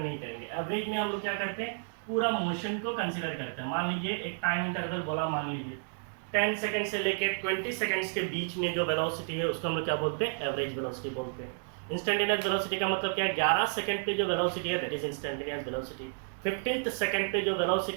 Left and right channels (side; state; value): left; silent; digital silence